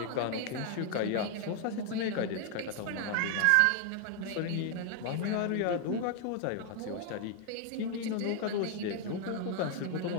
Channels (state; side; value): different; both; correlation 0.00